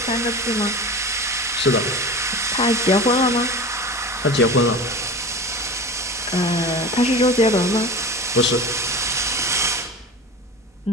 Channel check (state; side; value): normal; both; correlation 0.32